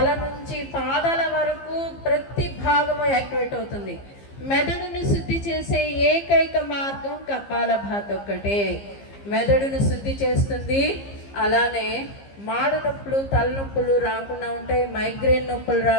నుంచి పాదాల వరకు ప్రతి భాగము యాక్టివేట్ అవుతుంది. మెదడును శుద్ధి చేసే ఏకైక మార్గం కపాలభాతి ఒక్కటే. మెదడును శుద్ధి చేస్తుంది. అలానే మాడ నొప్పులు, తలనొప్పులు రాకుండా ఉంటాయి, మైగ్రేన్ నొప్పులు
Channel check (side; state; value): right; late; 15 ms